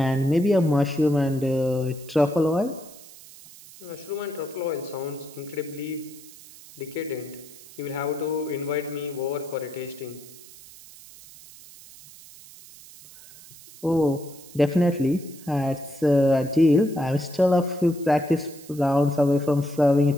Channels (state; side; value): noise; right; hiss, 20 dB below the sound